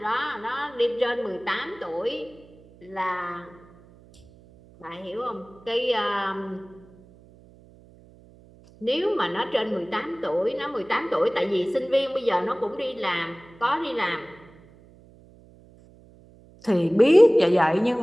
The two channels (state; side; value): noise; right; hum, 25 dB below the sound